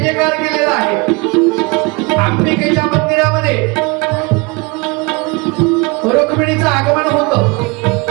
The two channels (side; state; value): left; quieter; 27.1 dB